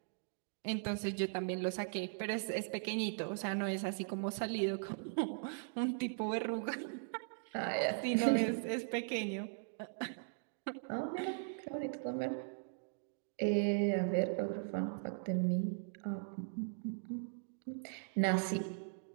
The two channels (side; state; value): left; silent; digital silence